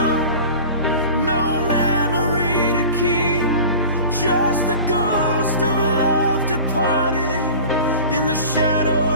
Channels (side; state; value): both; inverted; correlation -0.38